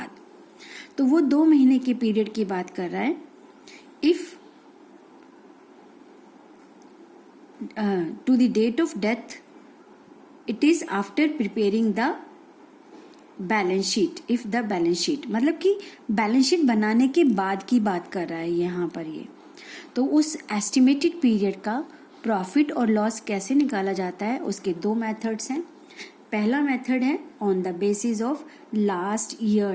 तो वो 2 महीने के पीरियड की बात कर रहा है। If to the date of death it is after preparing the balance sheet, if the balance sheet मतलब कि बैलेंस शीट बनाने के बाद की बात कर रहा है यहाँ पर ये। तो उस एस्टिमेटेड पीरियड का प्रॉफिट और लॉस कैसे निकाला जाता है, उसके 2 मेथड्स हैं। पहला मेथड है on the basis of last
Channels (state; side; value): identical; both; correlation 1.00